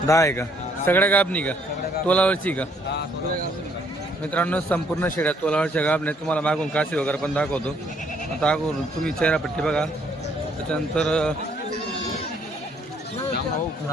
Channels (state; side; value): normal; both; correlation 0.66